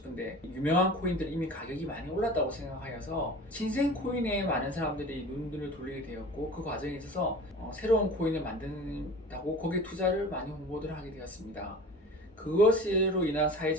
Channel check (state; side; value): normal; both; correlation 0.39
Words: 유명한 코인들은 이미 가격이 많이 올랐다고 생각하여서 신생 코인에 많은 사람들이 눈을 돌리게 되었고, 그 과정에 있어서 새로운 코인을 만든다고 거기에 투자를 많이 홍보를 하게 되었습니다. 그것으로 인한